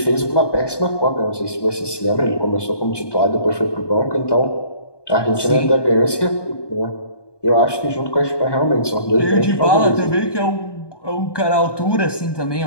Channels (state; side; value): late; right; 1.2 ms